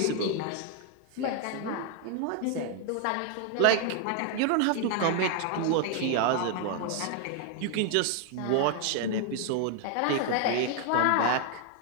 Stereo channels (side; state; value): both; different; correlation 0.00